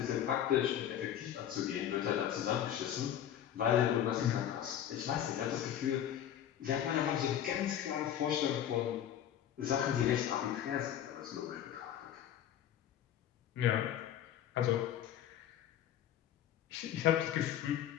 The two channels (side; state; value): right; quieter; 10.5 dB